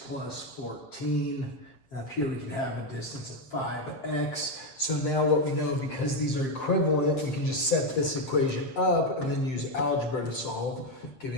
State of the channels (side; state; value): right; late; 7.6 ms